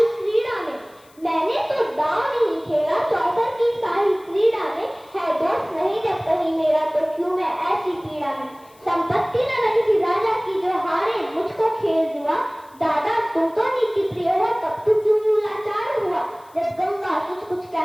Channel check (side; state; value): left; noise; hiss, 29 dB below the sound